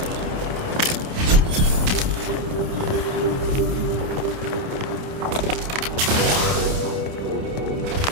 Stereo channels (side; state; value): left; late; 29 ms